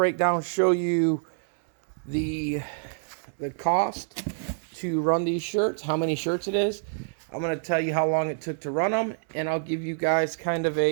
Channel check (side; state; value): left; silent; 60 dB below the other